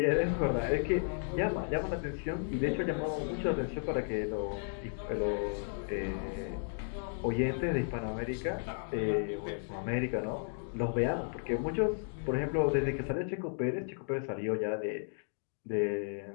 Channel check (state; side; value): silent; right; digital silence